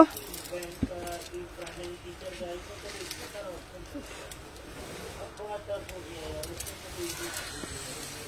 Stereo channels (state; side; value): identical; both; correlation 1.00